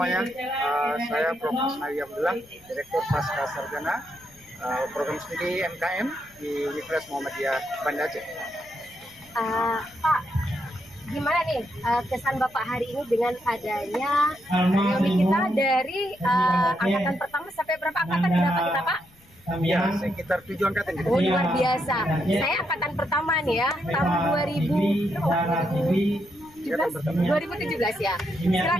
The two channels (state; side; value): noise; left; rumble, 28 dB below the sound